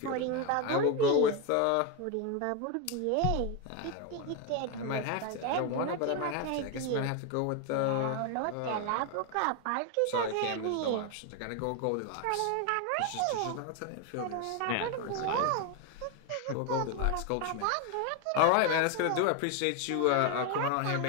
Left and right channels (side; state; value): both; different; correlation 0.02